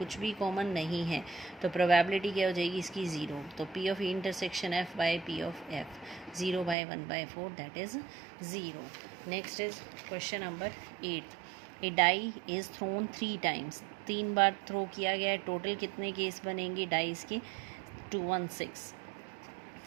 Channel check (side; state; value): left; drops out; at 6.8 s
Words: भी कॉमन नहीं है, तो प्रोबेबिलिटी क्या हो जाएगी इसकी 0। तो P of intersection F by P of F, 0/1/4, that is 0। Next is question number 8। A die is thrown 3 times. 3 बार थ्रो किया गया है। टोटल कितने केस बनेंगे डाइस के, 2, 1, 6।